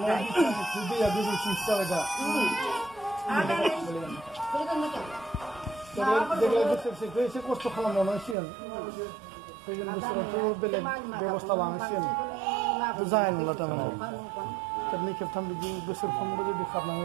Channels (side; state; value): left; drops out; at 8.3 s